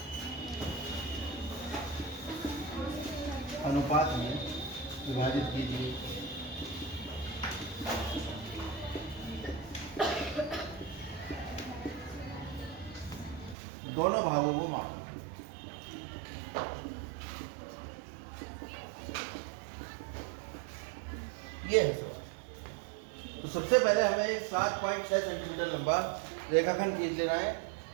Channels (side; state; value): left; drops out; at 13.6 s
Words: अनुपात में विभाजित कीजिए। दोनों भागों को मापें। ये है सर। तो सबसे पहले हमें एक 7.6 सेंटीमीटर लंबा रेखाखंड खींच लेना है।